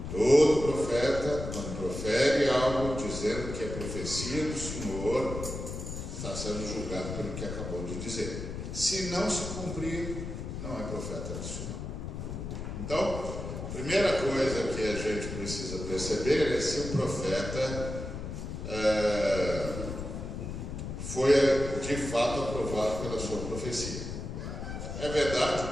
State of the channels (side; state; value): left; noise; rumble, 6 dB below the sound